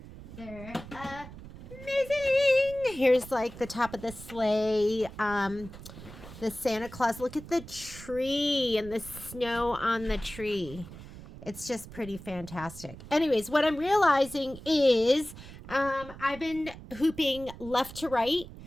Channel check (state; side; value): noise; right; rumble, 15 dB below the sound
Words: They're amazing. Here's like the top of the sleigh, the Santa Claus. Look at the tree and the snow on the tree. It's just pretty fantastic. Anyways, what I'm realizing is I've been hooping left to right